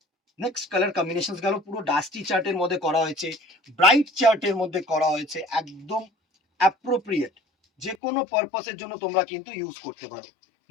নেক্সট কালার কম্বিনেশন গেল, পুরো ডাস্টি চার্টের মধ্যে করা হয়েছে, ব্রাইট চার্টের মধ্যে করা হয়েছে, একদম অ্যাপ্রোপ্রিয়েট, যে কোনো পারপাসের জন্য তোমরা কিন্তু ইউজ করতে পারো।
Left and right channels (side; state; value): right; drops out; at 8.0 s